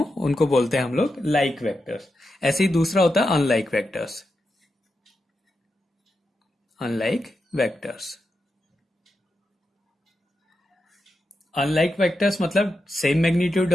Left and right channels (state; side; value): normal; both; correlation 0.87